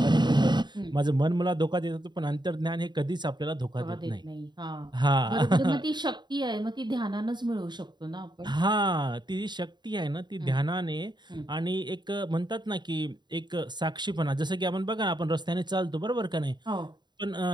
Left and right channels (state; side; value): late; left; 0.21 ms